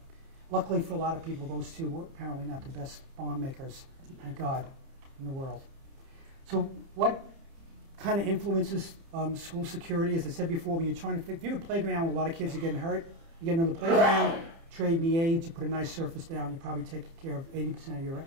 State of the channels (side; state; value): left; late; 30 ms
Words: luckily for a lot of people, those two were apparently not the best bomb makers, thank God, in the world. So what kind of influences school security? As I said before, when you're trying to if you have a playground where a lot of kids are getting hurt, you get another playground, trade the aids, you put a nice surface down, you probably take care of 80%